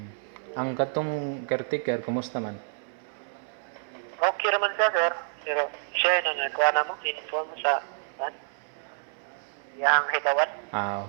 Ang katong caretaker, kumusta man? Okay naman siya sir, pero siya na nagkuha na mo, inform sa yang higawat.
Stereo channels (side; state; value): left; silent; 59 dB below the other